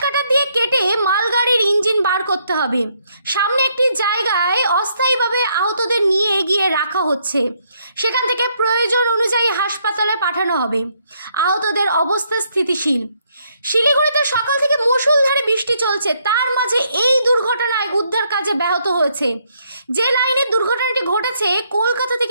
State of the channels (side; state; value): both; inverted; correlation -0.72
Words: কাটার দিয়ে কেটে মালগাড়ির ইঞ্জিন বার করতে হবে। সামনে একটি জায়গায় অস্থায়ীভাবে আহতদের নিয়ে এগিয়ে রাখা হচ্ছে, সেখান থেকে প্রয়োজন অনুযায়ী হাসপাতালে পাঠানো হবে। আহতদের অবস্থা স্থিতিশীল। শিলিগুড়িতে সকাল থেকে মুষলধারে বৃষ্টি চলছে, তার মাঝে এই দুর্ঘটনায় উদ্ধার কাজে ব্যাহত হয়েছে। যে লাইনে দুর্ঘটনাটি ঘটেছে কলকাতা